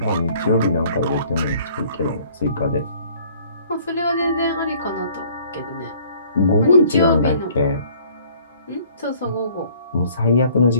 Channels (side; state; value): both; inverted; correlation -0.56